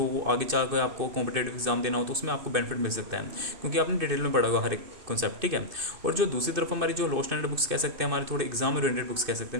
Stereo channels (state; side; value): late; left; 2.6 ms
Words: वो आगे चल कर आपको कॉम्पिटेटिव एग्जाम देना हो तो उसमें आपको बेनिफिट मिल सकता है, क्योंकि आपने डिटेल में पढ़ा होगा हर एक कॉन्सेप्ट, ठीक है। और जो दूसरी तरफ हमारी जो लो स्टैंडर्ड बुक्स कह सकते हैं, हमारे थोड़े एग्जाम ओरिएंटेड बुक्स कह सकते